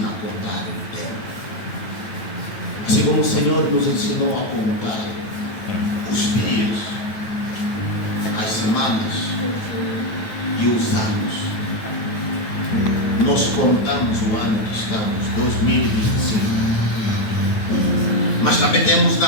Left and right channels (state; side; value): late; right; 9.1 ms